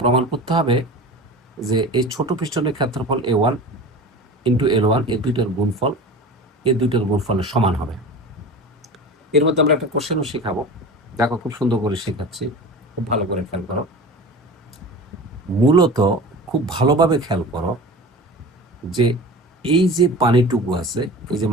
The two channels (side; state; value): both; normal; correlation 0.35